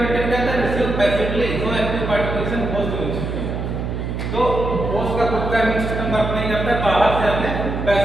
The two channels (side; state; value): right; noise; hum, 4 dB below the sound